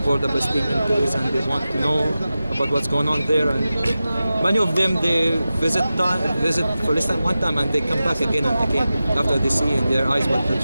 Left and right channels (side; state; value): both; inverted; correlation -0.94